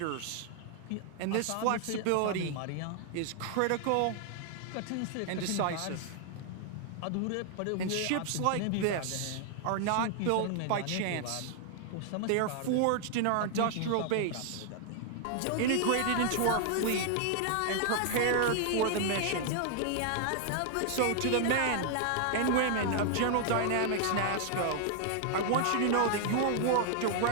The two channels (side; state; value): both; different; correlation 0.00